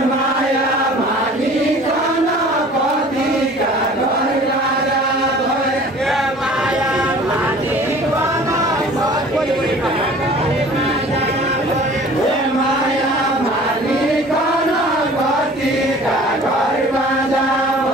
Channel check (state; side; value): normal; both; correlation 0.47